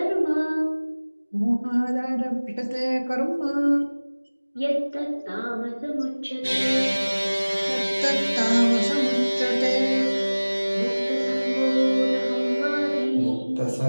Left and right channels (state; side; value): inverted; both; correlation -1.00